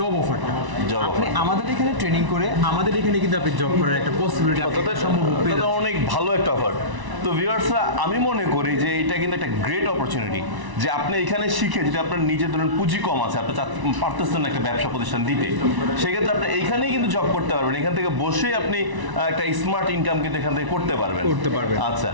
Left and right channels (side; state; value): left; late; 1.0 ms